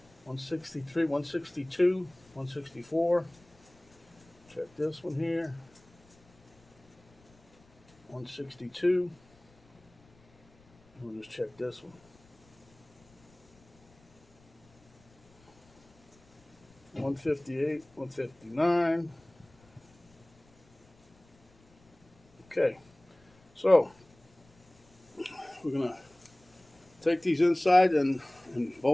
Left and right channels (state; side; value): noise; left; rumble, 30 dB below the sound